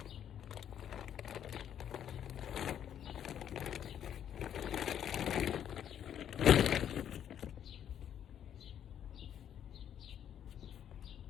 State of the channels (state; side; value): quieter; right; 9.6 dB